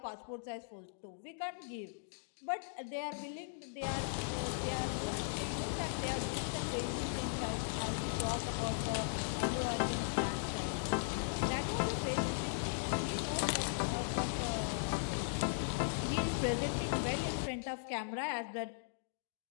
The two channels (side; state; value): right; silent; digital silence